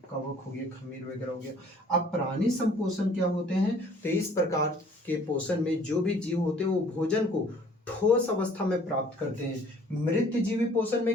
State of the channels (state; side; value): normal; both; correlation 0.55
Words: कवक हो गया, खमीर वगैरह हो गया। अब प्राणी संपोषण क्या होते हैं, तो इस प्रकार के पोषण में जो भी जीव होते हैं वो भोजन को ठोस अवस्था में प्राप्त करते हैं। मृत जीवी पोषण